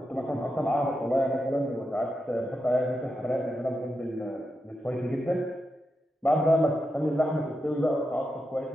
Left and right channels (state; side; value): normal; both; correlation 0.87